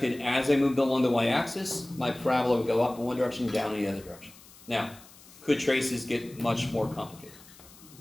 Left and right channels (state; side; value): noise; left; hiss, 22 dB below the sound